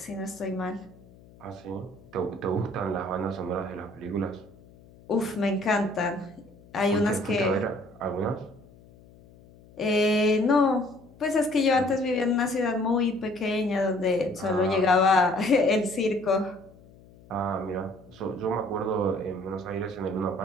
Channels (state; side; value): noise; left; hum, 24 dB below the sound